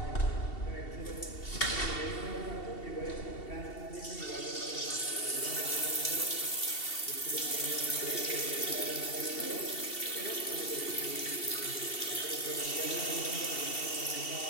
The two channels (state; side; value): late; right; 2.7 ms